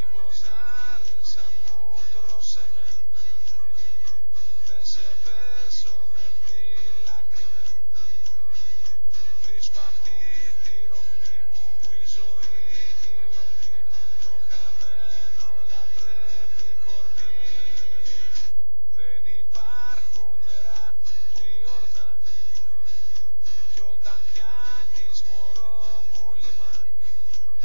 άρισα μου, τρώσε με, δεν σε πέσω με φυλάκρη με. Βρίσκω αυτή τη ρογμή που η ζωή η ομή, το χαμένο λατρεύει κορμί. Δεν υπάρχουν νερά του Ιορδάνη κι όταν πιάνεις μωρό μου λιμάνι,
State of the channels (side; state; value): both; inverted; correlation -1.00